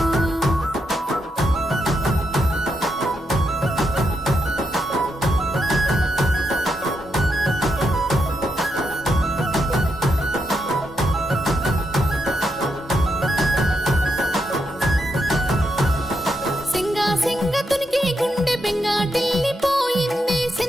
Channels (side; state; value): both; normal; correlation 0.82